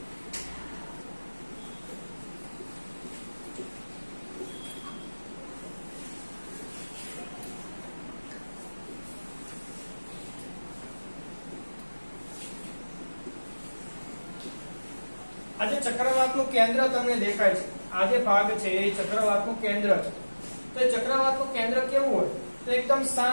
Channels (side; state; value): both; inverted; correlation -1.00